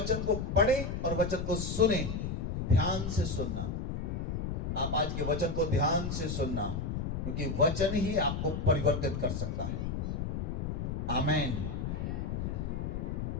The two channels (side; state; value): left; noise; rumble, 2 dB below the sound